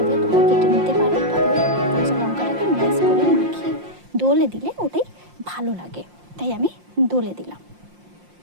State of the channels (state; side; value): late; left; 5.7 ms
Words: তোমরা কেটে নিতে পারো, তবে কাঁচা লঙ্কাটাকে ম্যাশ করে মাখিয়ে দোলে দিলে ওটাই ভালো লাগে, তাই আমি দোলে দিলাম।